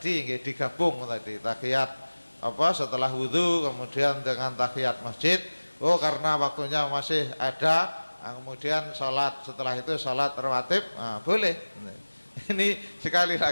digabung tadi, tahiyat setelah wudu kemudian dengan tahiyat masjid. Karena waktunya masih ada, kemudian sholat setelah itu sholat rawatib, boleh. Ini sekali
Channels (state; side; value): inverted; both; correlation -1.00